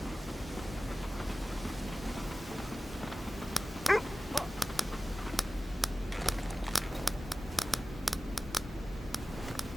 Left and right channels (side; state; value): both; normal; correlation 0.96